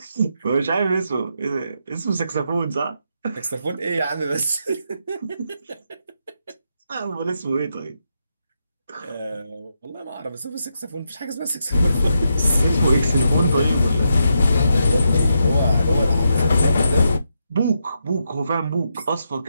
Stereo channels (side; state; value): both; inverted; correlation -0.82